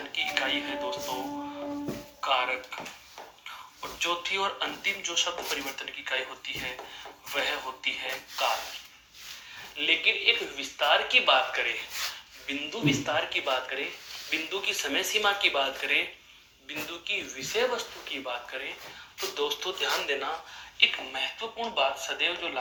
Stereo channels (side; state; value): both; identical; correlation 1.00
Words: की इकाई है दोस्तों कारक। और चौथी और अंतिम जो शब्द परिवर्तन की इकाई होती है वह होती है काल। लेकिन एक विस्तार की बात करें, बिंदु विस्तार की बात करें, बिंदु की समय सीमा की बात करें, बिंदु की विषय वस्तु की बात करें, तो दोस्तों ध्यान देना, एक महत्वपूर्ण बात सदैव जो